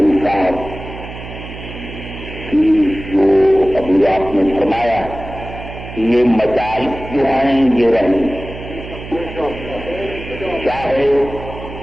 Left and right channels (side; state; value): right; noise; hum, 12 dB below the sound